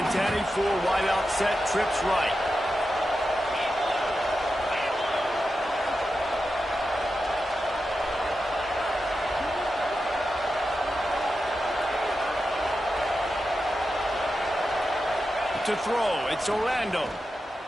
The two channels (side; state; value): both; normal; correlation 0.90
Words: 10, 4 wide out set, trips right. To throw, it's Orlando.